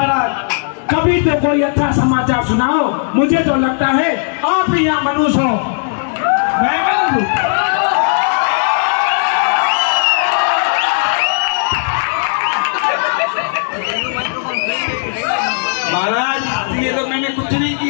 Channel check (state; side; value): silent; right; digital silence